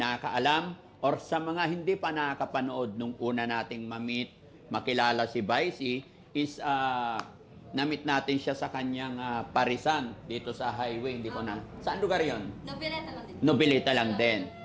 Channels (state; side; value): identical; both; correlation 1.00